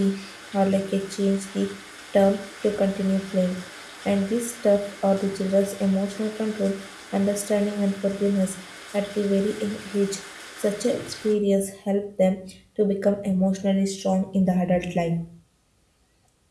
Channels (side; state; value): both; identical; correlation 1.00